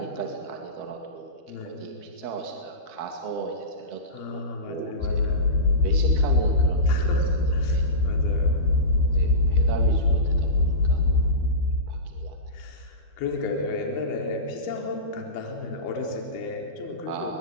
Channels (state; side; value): late; right; 12 ms